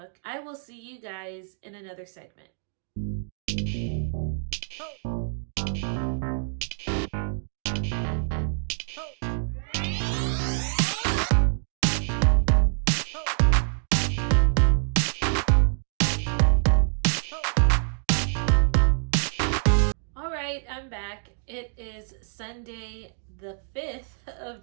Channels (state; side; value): silent; left; 61 dB below the other